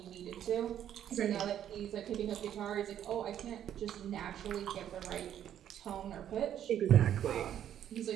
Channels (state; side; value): quieter; left; 10.4 dB